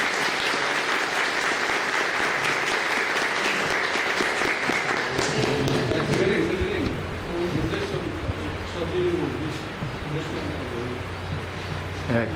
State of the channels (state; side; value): identical; both; correlation 1.00